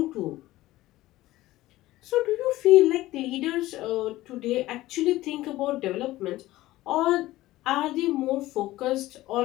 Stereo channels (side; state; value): right; quieter; 16.8 dB